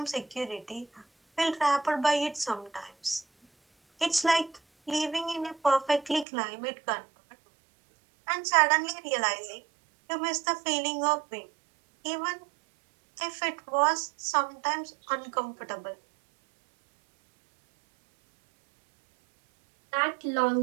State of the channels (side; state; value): left; drops out; at 6.2 s